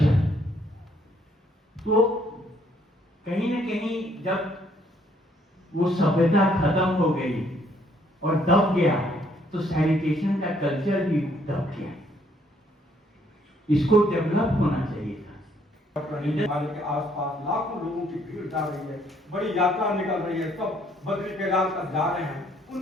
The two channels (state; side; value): normal; both; correlation 0.67